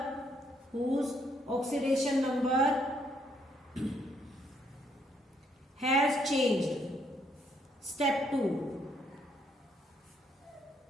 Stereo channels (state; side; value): normal; both; correlation 0.71